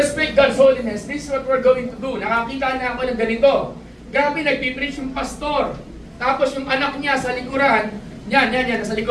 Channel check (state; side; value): identical; both; correlation 1.00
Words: God's holiness, this is what we're going to do. Nakakita na ako ng ganito. Grabe, nagpipreach yung pastor. Tapos yung anak niya sa likuran, yan, nasa